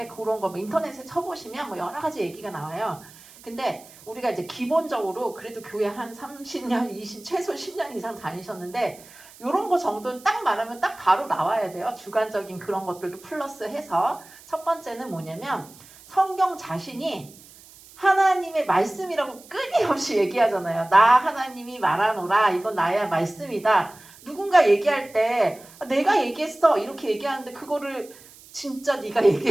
그런 거 뭐 인터넷에 쳐보시면 뭐 여러 가지 얘기가 나와요. 근데 우리가 이제 기본적으로 그래도 교회 한 30년, 20, 최소 10년 이상 다니셨는데 이런 거 정도는 딱 말하면 딱 바로 나와야 돼요. 주관적인 그런 것들도 플러스해서. 첫 번째는 뭐냐면 성경 자신이 하나님의 말씀이라고 끊임없이 얘기하잖아요. 나 하나님이 말하노라. 이건 나의 말씀이다. 누군가 얘기할 때 내가 얘기했어 이렇게 얘기하는데 그거를 진짜 네가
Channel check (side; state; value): right; noise; hiss, 22 dB below the sound